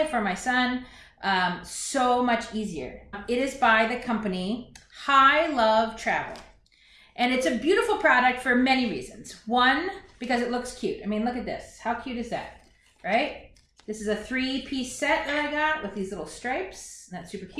for my son, so much easier. It is by the company High Love Travel. And it's a beautiful product for many reasons. One, because it looks cute. I mean, look at this. How cute is that, right? This is a 3-piece set that I got with these little stripes. That's super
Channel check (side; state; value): both; identical; correlation 1.00